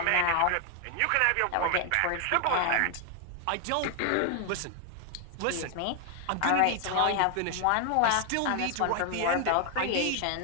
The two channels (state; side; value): different; both; correlation 0.00